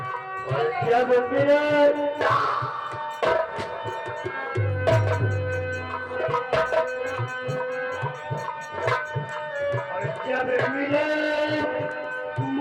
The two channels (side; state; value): both; identical; correlation 1.00